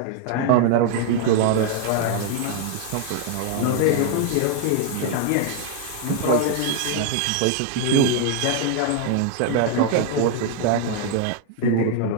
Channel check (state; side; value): different; both; correlation 0.00